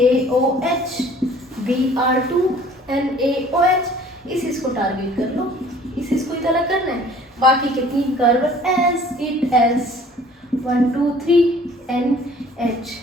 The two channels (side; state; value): both; normal; correlation 0.52